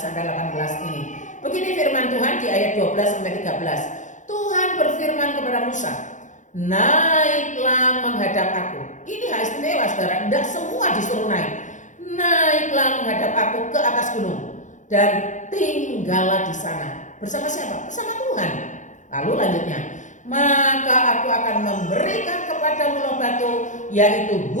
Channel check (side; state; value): right; late; 0.36 ms